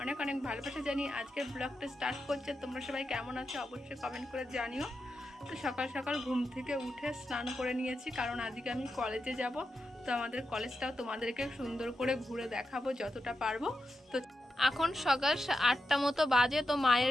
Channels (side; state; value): both; normal; correlation 0.88